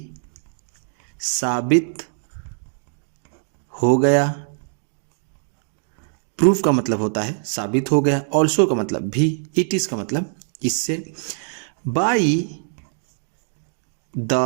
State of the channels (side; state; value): left; silent; digital silence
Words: साबित हो गया। प्रूफ का मतलब होता है साबित हो गया, ऑल्सो का मतलब भी, इट इज का मतलब इससे। बाई द